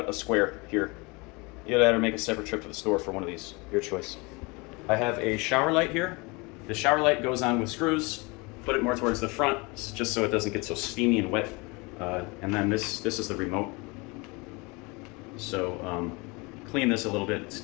a square here. Either that or make a separate trip to the store for one of these, your choice. I have a shower light here. The shower light goes on with screws. Put it more towards the front, just so it doesn't get so steamy and wet. And then this is the remote. So clean this a little bit, it's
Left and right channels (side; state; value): right; quieter; 27.0 dB